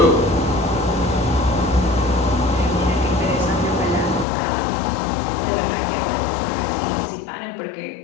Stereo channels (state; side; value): drops out; right; at 4.2 s